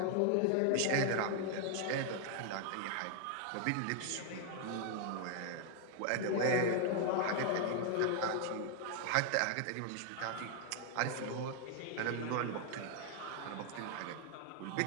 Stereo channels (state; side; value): different; both; correlation 0.00